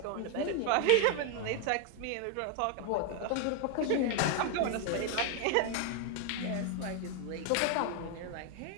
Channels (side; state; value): both; different; correlation 0.00